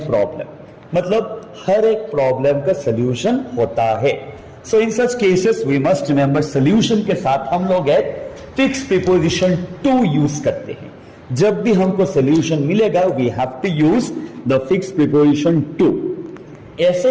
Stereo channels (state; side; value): identical; both; correlation 1.00